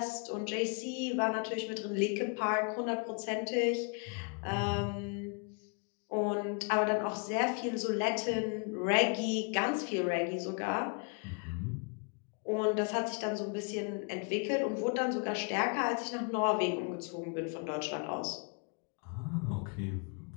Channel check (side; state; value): right; quieter; 35.5 dB